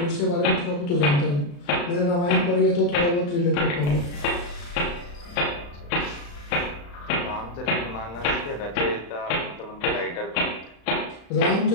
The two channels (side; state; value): right; late; 35 ms